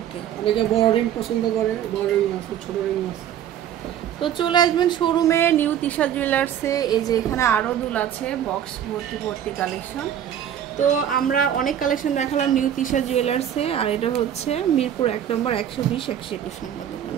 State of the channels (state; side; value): quieter; left; 9.9 dB